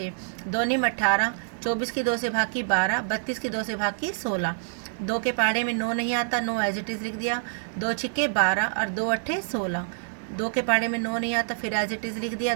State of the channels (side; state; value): left; silent; 60 dB below the other